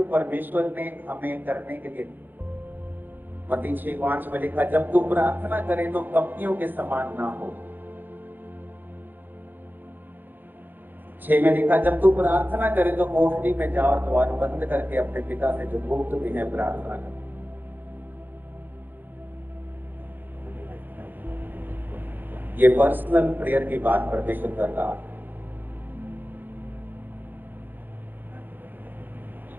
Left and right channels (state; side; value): late; left; 0.090 ms